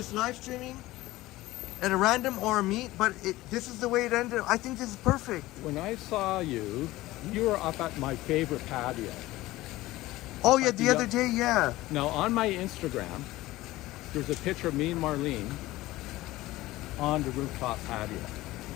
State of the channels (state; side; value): quieter; right; 17.7 dB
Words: live streaming at a random or a meet? But this is the way it ended. I think this is perfect. When I saw you, you were up at my favorite patio. Oh yeah, the other day, yeah. Now on my Instagram, there's a picture of me and Marlene on the rooftop patio.